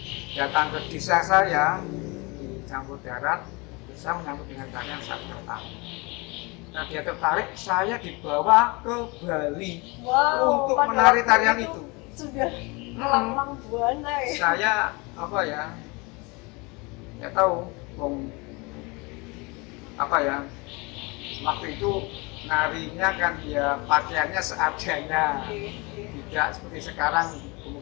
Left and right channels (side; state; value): right; quieter; 27.1 dB